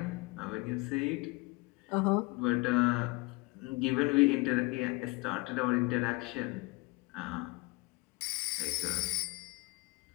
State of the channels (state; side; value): quieter; right; 25.2 dB